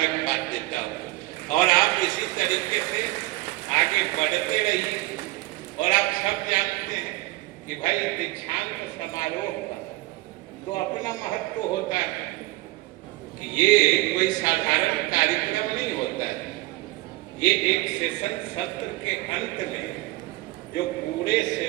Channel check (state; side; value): quieter; left; 20.0 dB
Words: देता हूँ। और आप इसी तरीके से आगे बढ़ते रहिए। और आप सब जानते हैं कि भाई दीक्षांत समारोह का तो अपना महत्व होता है कि ये कोई साधारण कार्यक्रम नहीं होता है। ये एक सेशन सत्र के अंत में जो पूरे